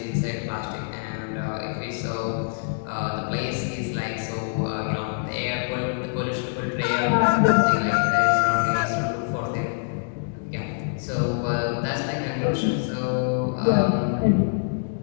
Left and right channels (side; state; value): right; silent; digital silence